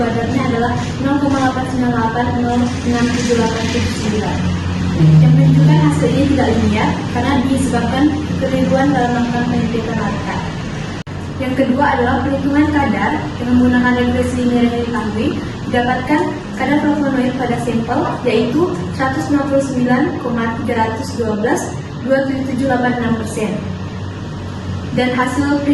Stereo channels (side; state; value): both; identical; correlation 1.00